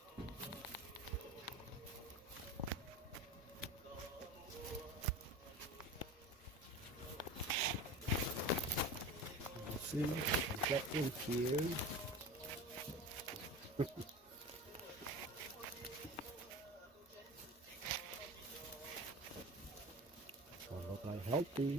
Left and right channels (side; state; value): both; normal; correlation 0.32